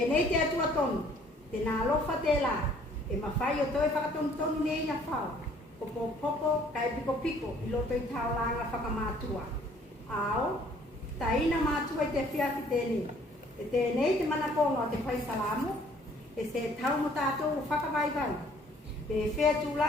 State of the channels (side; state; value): both; normal; correlation 0.59